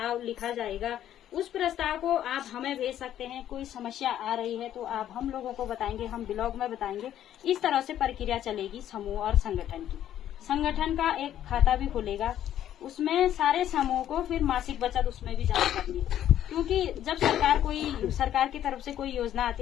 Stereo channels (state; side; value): quieter; right; 11.3 dB